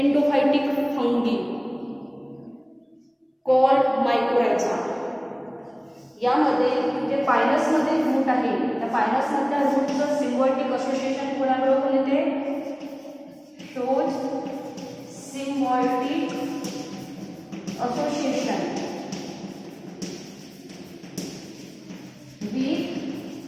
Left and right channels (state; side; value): identical; both; correlation 1.00